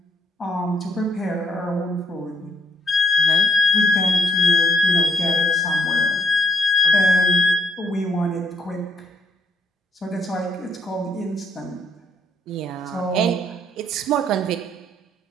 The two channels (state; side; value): normal; both; correlation 0.72